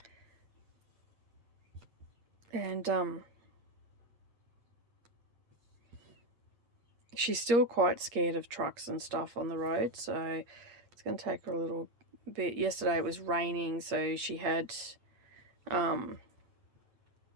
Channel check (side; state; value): left; late; 8.5 ms